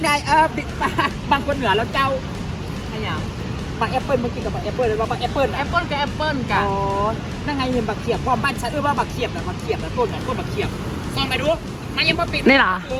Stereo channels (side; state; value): both; identical; correlation 1.00